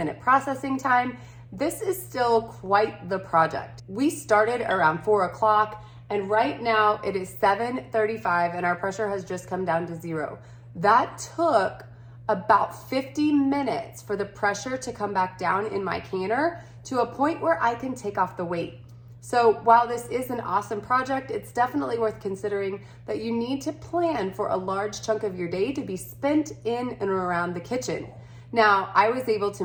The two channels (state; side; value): identical; both; correlation 1.00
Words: processing time, this is still quite the project. We started around 4 o'clock, and right now it is 7:35 and our pressure has just come down to 0. That took about 50 minutes for the pressure to come back down in my canner to a point where I can take off the weight. So while this is an awesome project, it's definitely worth considering that you need to plan for a large chunk of your day to be spent in and around the kitchen. Now, I was able to